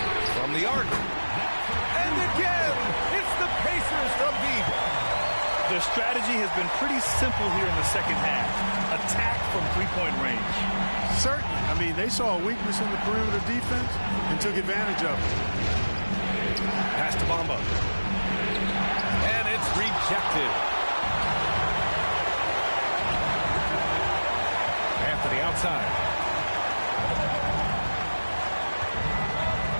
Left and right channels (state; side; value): inverted; both; correlation -1.00